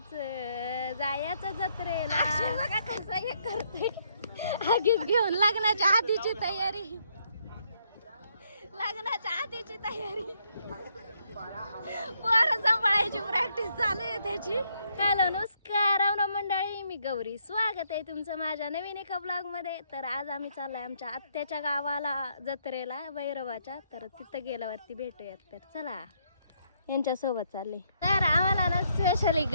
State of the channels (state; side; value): inverted; both; correlation -0.73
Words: जत्रेला बघा कसं हे करते आगीच घेऊन लग्नाच्या आधीची तयारी पोरं सांभाळायची प्रॅक्टिस चालू आहे त्याची. हॅलो नमस्कार रावणा मंडळी, मी गौरी. स्वागत आहे तुमचं माझ्या नवीन एका ब्लॉग मध्ये. तर आज आम्ही चाललोय आमच्या आत्याच्या गावाला जत्रेला भैरवाच्या. तर तिथं गेल्यावरती भेटूयात. तर चला यांच्यासोबत चालले. तर आम्हाला ना स्पेशली